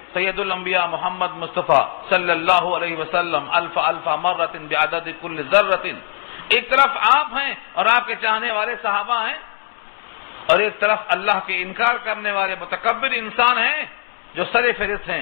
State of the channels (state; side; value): silent; right; 56 dB below the other